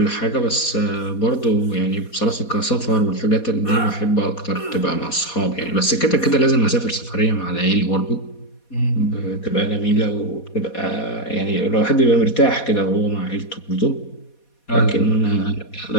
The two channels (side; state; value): right; late; 4.2 ms